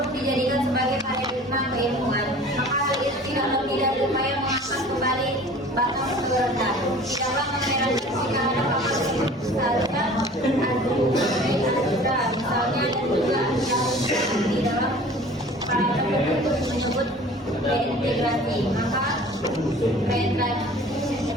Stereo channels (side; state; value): both; normal; correlation 0.45